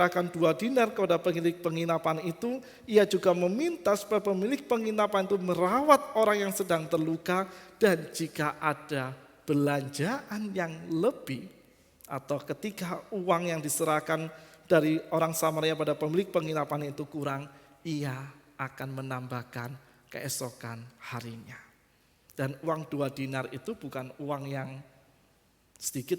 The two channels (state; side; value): identical; both; correlation 1.00